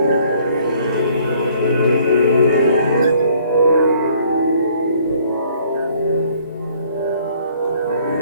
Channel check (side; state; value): both; inverted; correlation -0.59